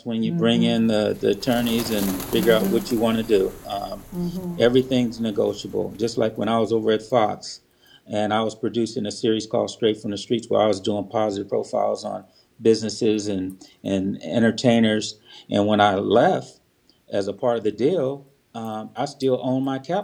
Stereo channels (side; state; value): both; identical; correlation 1.00